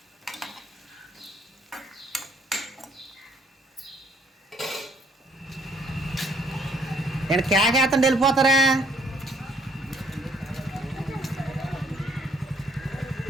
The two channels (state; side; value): normal; both; correlation 0.64